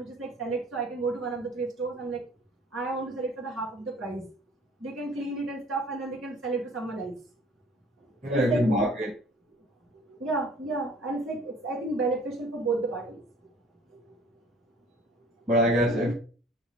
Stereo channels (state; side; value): normal; both; correlation 0.51